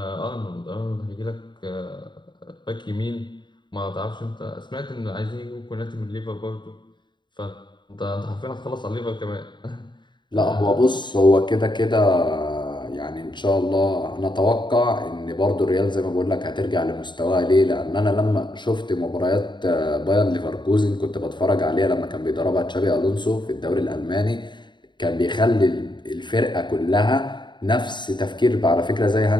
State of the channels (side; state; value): right; late; 0.22 ms